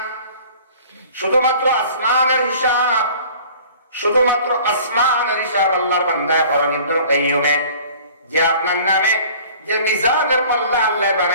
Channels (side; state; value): both; inverted; correlation -0.48